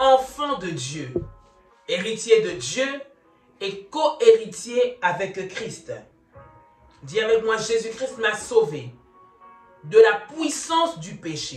de Dieu, héritier de Dieu et co-héritier avec Christ. Dis avec moi: Jésus-Christ m'a sauvé de la puissance du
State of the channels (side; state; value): both; identical; correlation 1.00